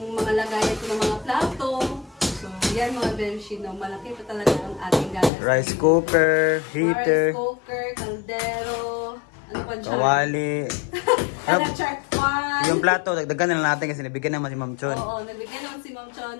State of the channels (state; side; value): drops out; right; at 5.3 s